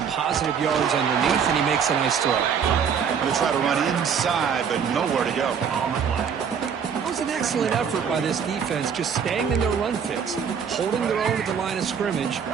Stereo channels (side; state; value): left; quieter; 7.1 dB